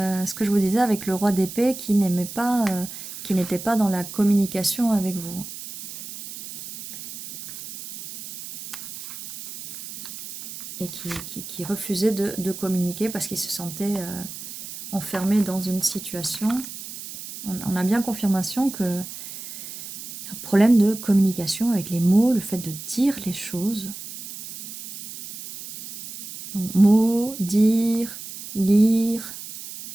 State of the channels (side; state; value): right; noise; hiss, 11 dB below the sound